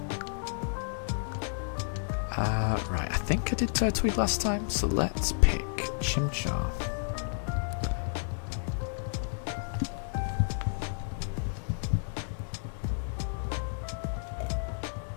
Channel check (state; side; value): silent; right; digital silence